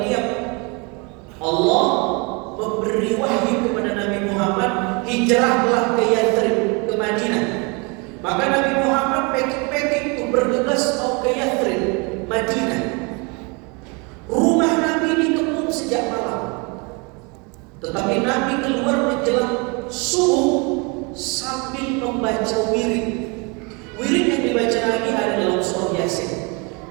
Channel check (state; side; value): quieter; left; 30.6 dB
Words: diam. Allah memberi wahyu kepada Nabi Muhammad, hijrahlah ke Yathrib, ke Madinah. Maka Nabi Muhammad packing-packing untuk bergegas mau ke Yathrib, Madinah. Rumah Nabi dikepung sejak malam. Tetapi Nabi keluar menjelang subuh sambil membaca wirid. Wirid yang dibaca Nabi ada dalam surah Yasin.